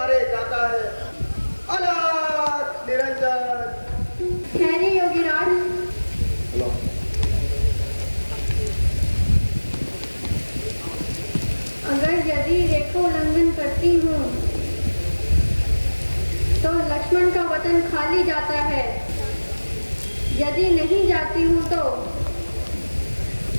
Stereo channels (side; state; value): both; inverted; correlation -1.00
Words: जाता है। अलग निरंजन। ठहरे योगीराज, अगर यदि रेखा उल्लंघन करती हूँ तो लक्ष्मण का वतन खाली जाता है, यदि नहीं जाती हूँ तो